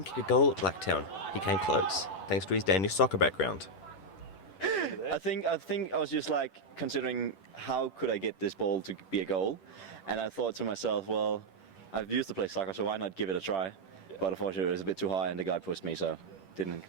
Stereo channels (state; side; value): late; right; 10 ms